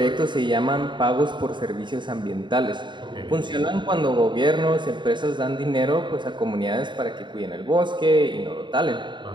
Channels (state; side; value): late; left; 0.23 ms